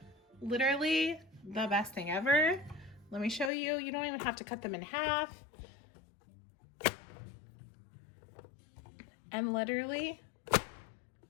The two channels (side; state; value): right; drops out; at 3.5 s